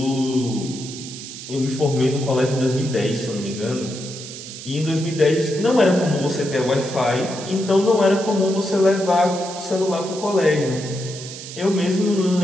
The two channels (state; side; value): noise; right; hiss, 12 dB below the sound